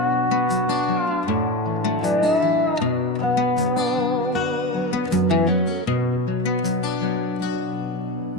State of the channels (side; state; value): both; normal; correlation 0.24